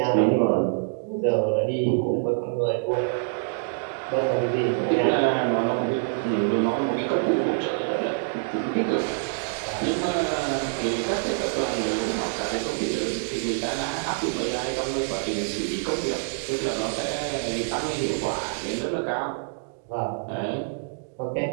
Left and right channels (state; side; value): silent; left; digital silence